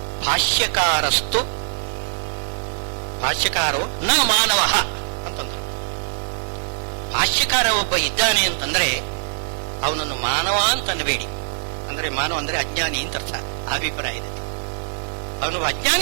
ಭಾಷ್ಯಕಾರೋ ನ ಮಾನವ ಅಂತಂದರು. ಭಾಷ್ಯಕಾರ ಒಬ್ಬ ಇದ್ದಾನೆ ಅಂತಂದ್ರೆ ಅವನನ್ನು ಮಾನವ ಅಂತ ಅನ್ನಬೇಡಿ. ಅಂದ್ರೆ ಮಾನವ ಅಂದ್ರೆ ಅಜ್ಞಾನಿ ಅಂತ ಅರ್ಥ, ಅಭಿಪ್ರಾಯ ಇದೆ. ಅವನು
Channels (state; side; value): silent; left; 64 dB below the other